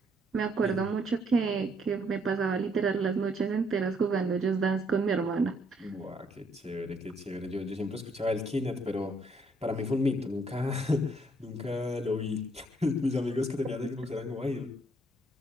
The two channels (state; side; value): normal; both; correlation 0.68